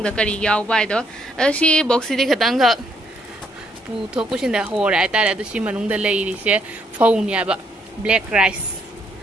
kari yawbai do si box di khatanga pu thokusinda hora aitare adu si manungda leiri se phone yaba black rice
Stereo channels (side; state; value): both; normal; correlation 0.72